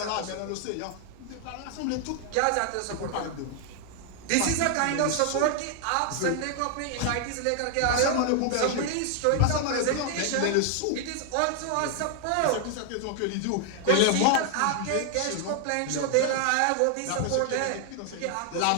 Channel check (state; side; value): different; both; correlation 0.00